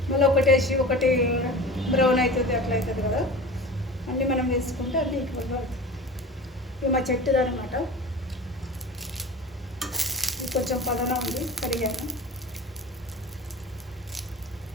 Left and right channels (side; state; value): both; normal; correlation 0.35